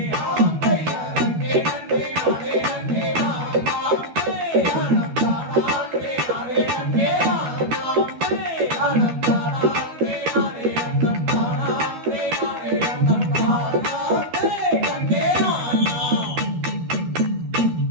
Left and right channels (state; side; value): late; left; 12 ms